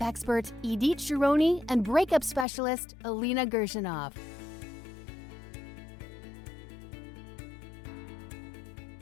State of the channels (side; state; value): right; drops out; at 2.5 s